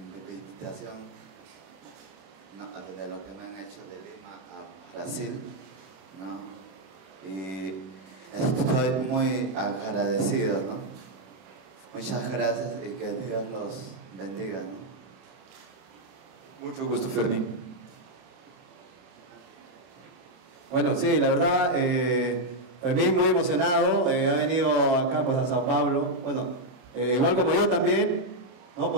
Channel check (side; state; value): left; late; 31 ms